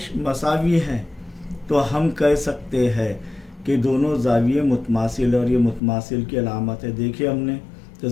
मसावी है, तो हम कह सकते हैं कि दोनों ज़ाविये मुतमासिल, और ये मुतमासिल की अलामत है। देखिए हमने तो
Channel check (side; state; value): right; drops out; at 5.8 s